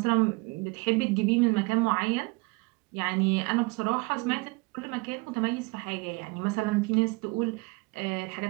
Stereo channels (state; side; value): quieter; left; 26.9 dB